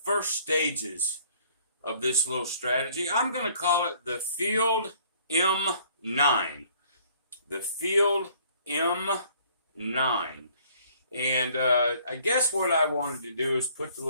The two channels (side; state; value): both; inverted; correlation -0.59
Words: first stages of this little strategy. I'm going to call it the Field M9. The Field M9. And I guess what I wanted to do is put the